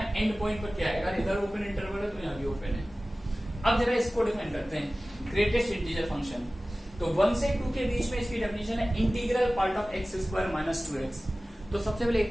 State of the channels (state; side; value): normal; both; correlation 0.97